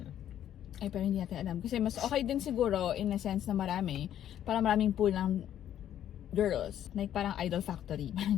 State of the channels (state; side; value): quieter; right; 10.8 dB